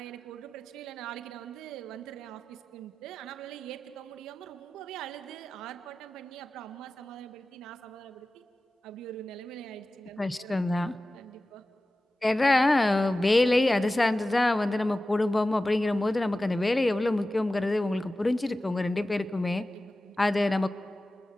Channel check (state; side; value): normal; both; correlation 0.95